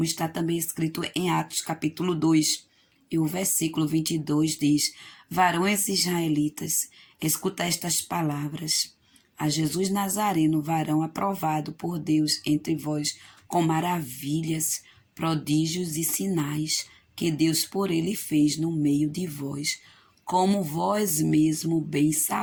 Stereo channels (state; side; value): identical; both; correlation 1.00